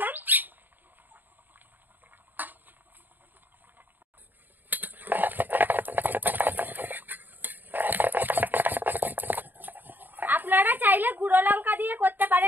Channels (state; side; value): late; left; 0.090 ms